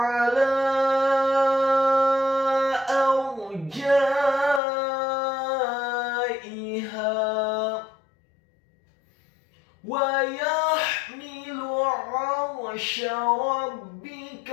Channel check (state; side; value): drops out; right; at 4.6 s